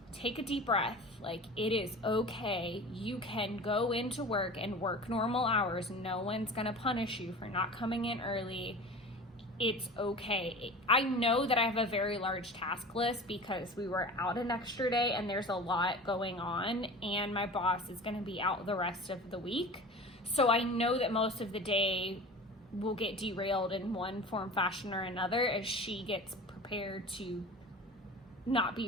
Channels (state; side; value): normal; both; correlation 0.36